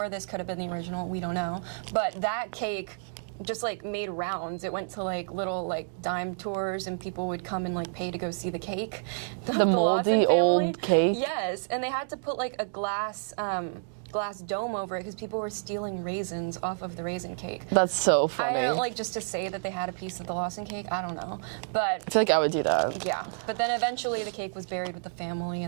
this could have been the original, we don't know. But that cake just like made rounds. It went to like little like dime tours and people would come and like pay to go see the cake. The Lawson family. Old cake? Yes, and they had to put like a glass dome over it because people were stealing raisins off of the raisin cake. That's so funny. I don't like just to say that they had a piece of the Lawson cake. I don't know, but I feel like I would do that. Yeah, but then eventually the cake was buried with the family,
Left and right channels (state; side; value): silent; left; digital silence